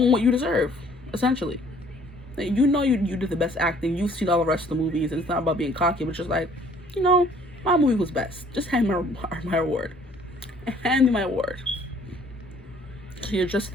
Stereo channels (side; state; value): both; normal; correlation 0.58